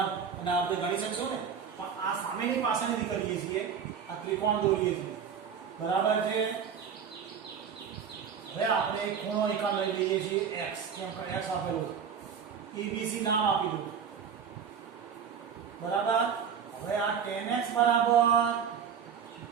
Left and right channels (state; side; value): quieter; left; 7.2 dB